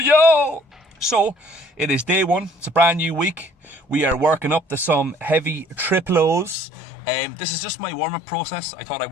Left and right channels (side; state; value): right; drops out; at 6.6 s